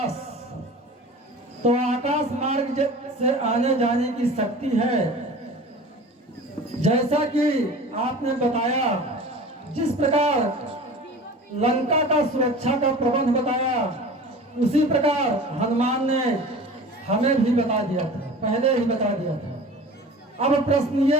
तो आकाश मार्ग से आने जाने की शक्ति है। जैसा कि आपने बताया, जिस प्रकार लंका का सुरक्षा का प्रबंध बताया, उसी प्रकार हनुमान ने हमें भी बता दिया था, पहले ही बता दिया था। अब प्रश्न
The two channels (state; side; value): normal; both; correlation 0.39